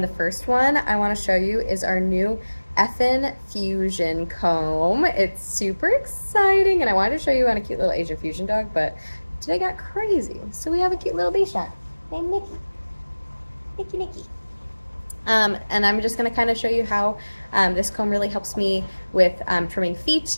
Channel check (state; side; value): inverted; both; correlation -1.00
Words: the first one I want to show you is our new Effin Fusion comb. It's super exciting, and I wanted to show you on a cute little Asian fusion dog, but today got crazy. So we have a cute little Bichon named Nikki. And I'm just going to kind of show you how this comb really helps me with trimming feet